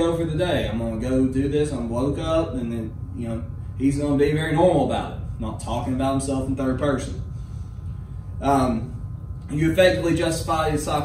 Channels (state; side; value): identical; both; correlation 1.00